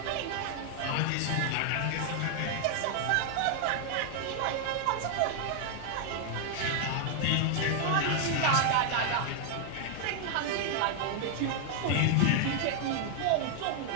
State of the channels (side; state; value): both; different; correlation 0.00